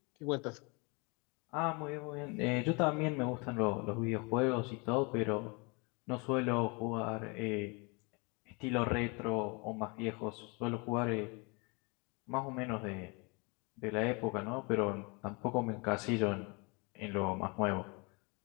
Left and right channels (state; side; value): quieter; right; 30.4 dB